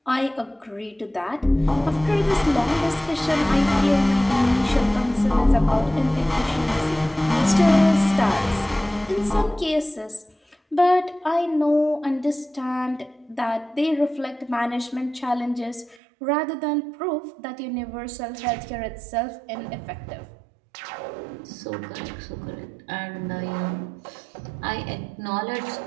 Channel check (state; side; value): drops out; left; at 16.0 s